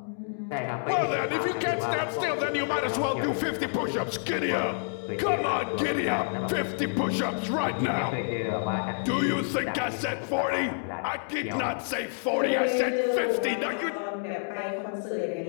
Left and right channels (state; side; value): silent; right; digital silence